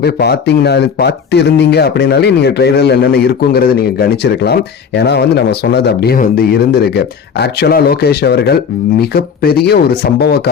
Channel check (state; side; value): quieter; right; 6.8 dB